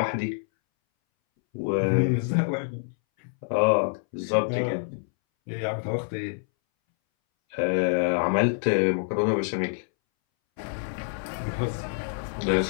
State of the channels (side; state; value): right; silent; 61 dB below the other